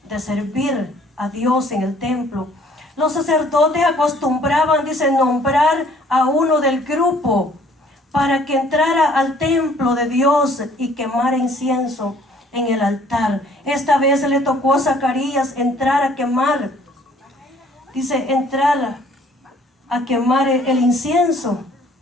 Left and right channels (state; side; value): normal; both; correlation 0.58